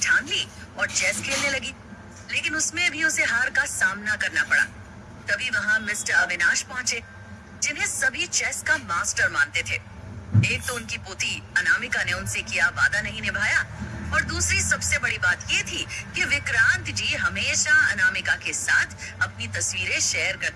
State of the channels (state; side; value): identical; both; correlation 1.00